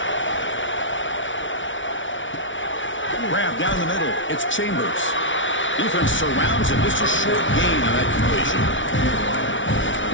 Grab down the middle. It's Chambers. Defense surrounds him. Just a short gain on that completion.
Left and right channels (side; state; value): right; late; 0.56 ms